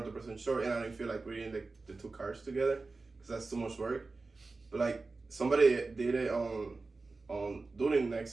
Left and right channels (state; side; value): quieter; left; 3.7 dB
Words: sure, and I didn't feel like reading the two cards together because that's too much work. But like somebody did it on